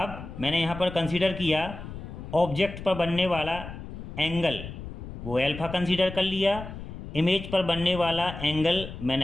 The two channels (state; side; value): noise; left; rumble, 10 dB below the sound